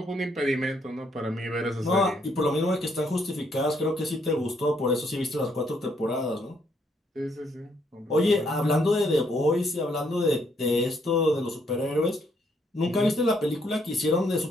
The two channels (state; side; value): normal; both; correlation 0.72